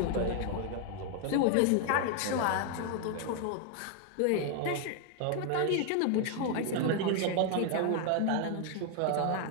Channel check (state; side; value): different; both; correlation 0.00